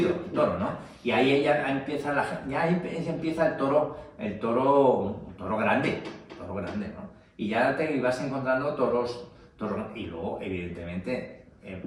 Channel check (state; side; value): identical; both; correlation 1.00